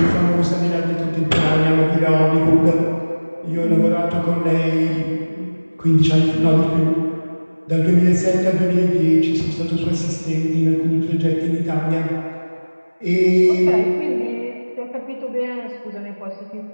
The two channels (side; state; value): both; inverted; correlation -1.00